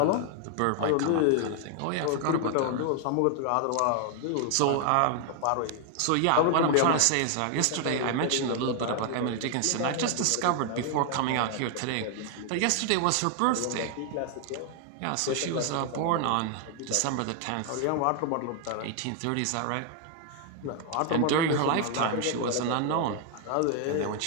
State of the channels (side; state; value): both; different; correlation 0.00